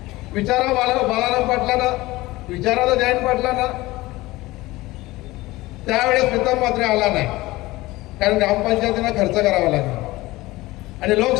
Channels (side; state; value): right; quieter; 19.4 dB